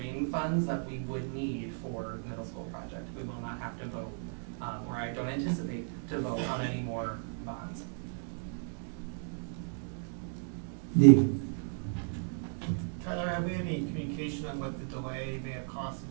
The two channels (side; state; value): left; silent; 55 dB below the other